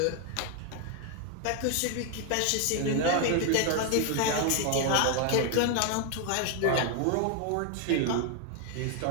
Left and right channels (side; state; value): both; different; correlation 0.01